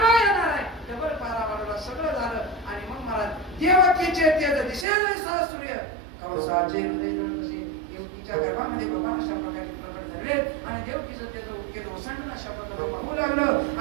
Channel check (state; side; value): drops out; left; at 4.9 s